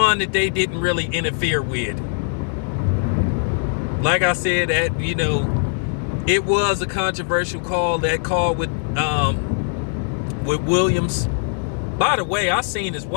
that they didn't really interfere with. Like I said, it was a controversial call. That call with Williams. By the way, I seen his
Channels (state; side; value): silent; right; digital silence